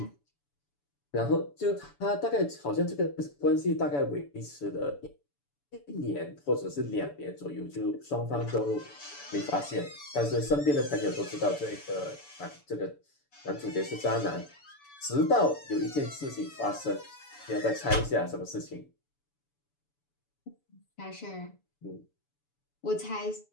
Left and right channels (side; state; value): right; late; 7.0 ms